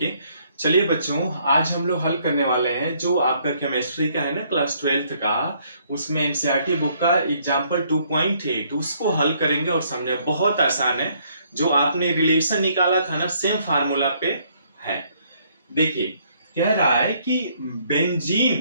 चलिए बच्चों, आज हम लोग हल करने वाले हैं जो आपका केमिस्ट्री का है ना, क्लास 12th का। उसमें एनसीईआरटी बुक का एग्जाम्पल 2.8 उसको हल करेंगे और समझे। बहुत आसान है। जो आपने रिलेशन निकाला था ना, सेम फार्मूला पे है। देखिए, कह रहा है कि बेंजीन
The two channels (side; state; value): both; inverted; correlation -0.67